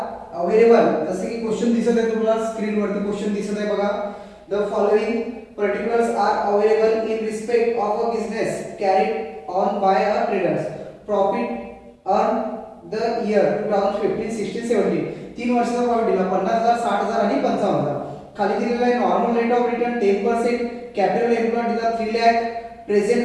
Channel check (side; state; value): both; identical; correlation 1.00